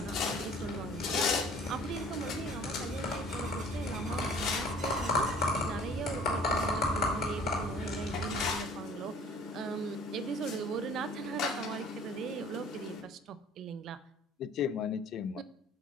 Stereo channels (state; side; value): normal; both; correlation 0.51